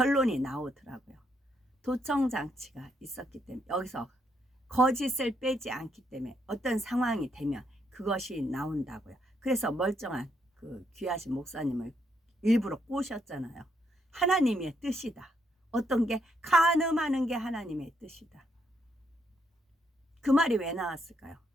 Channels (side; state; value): both; normal; correlation 0.76